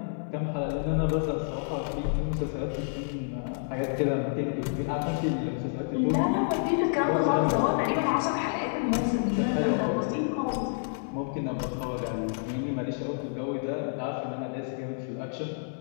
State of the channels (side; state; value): right; silent; 59 dB below the other